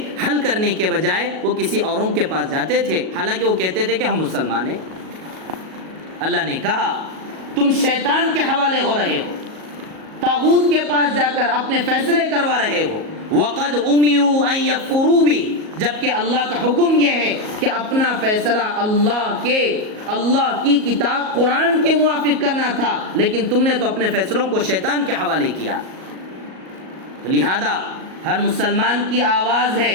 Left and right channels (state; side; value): late; left; 37 ms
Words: حل کرنے کے بجائے وہ کسی اوروں کے پاس جاتے تھے، حالانکہ وہ کہتے تھے کہ ہم مسلمان ہیں. اللہ نے کہا تم شیطان کے حوالے ہو رہے ہو، طاغوت کے پاس جا کر اپنے فیصلے کروا رہے ہو. وَقَدْ أُمِرُوا أَن يَكْفُرُوا بِهِ، جبکہ اللہ کا حکم یہ ہے کہ اپنا فیصلہ اللہ کی کتاب قرآن کے موافق کرنا تھا، لیکن تم نے تو اپنے فیصلوں کو شیطان کے حوالے کیا. تو لہذا ہر مسلمان کی آواز ہے.